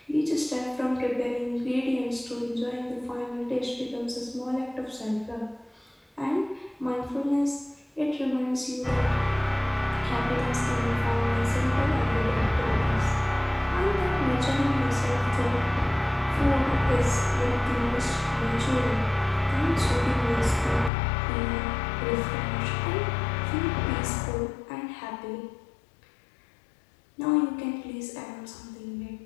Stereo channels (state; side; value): drops out; right; at 20.9 s